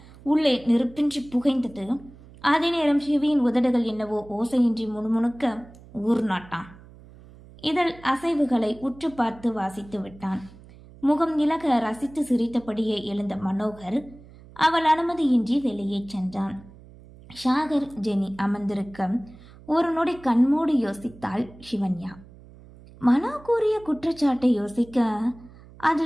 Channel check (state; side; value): noise; right; hum, 21 dB below the sound